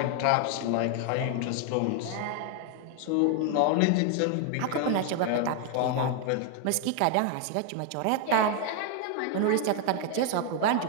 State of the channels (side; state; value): both; different; correlation 0.01